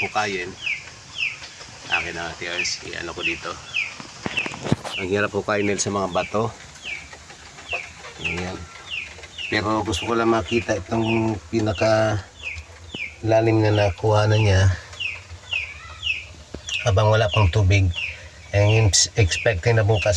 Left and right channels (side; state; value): both; identical; correlation 1.00